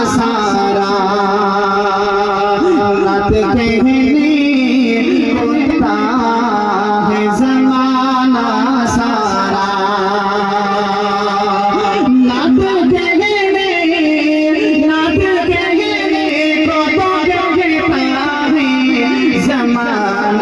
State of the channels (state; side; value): identical; both; correlation 1.00